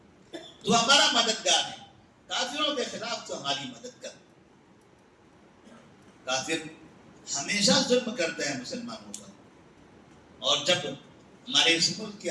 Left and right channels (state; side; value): identical; both; correlation 1.00